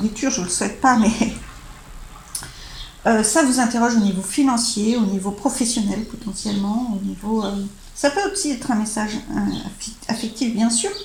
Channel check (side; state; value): both; identical; correlation 1.00